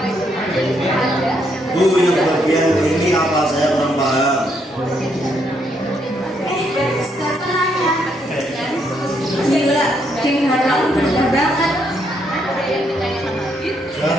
Bu, yang bagian ini apa? Saya kurang paham. Stop nanya. Gila, geng Harlem bener banget. Jangan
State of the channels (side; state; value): both; normal; correlation 0.74